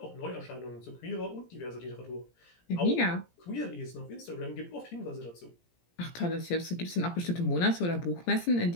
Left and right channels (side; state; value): right; late; 17 ms